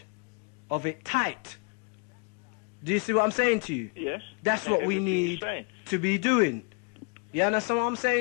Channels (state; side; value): quieter; right; 33.5 dB